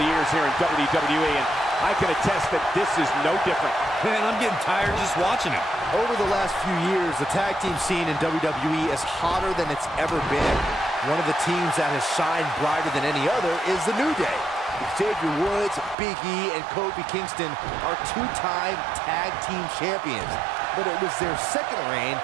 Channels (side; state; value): left; drops out; at 16.0 s